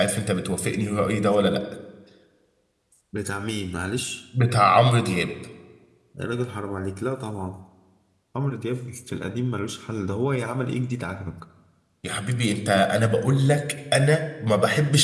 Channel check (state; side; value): identical; both; correlation 1.00